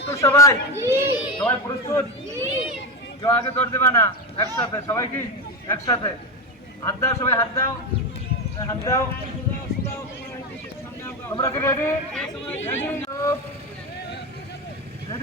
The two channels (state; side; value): normal; both; correlation 0.15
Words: সবাই? সবাই প্রস্তুত? কেউ আগে দৌড় দেবা না, একসাথে সবাই কি একসাথে হাত দাও, সবাই হাত দাও, হাত দাও। তোমরা কি রেডি?